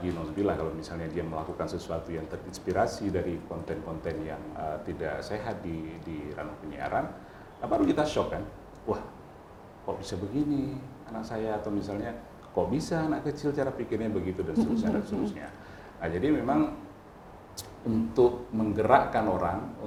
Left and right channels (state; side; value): identical; both; correlation 1.00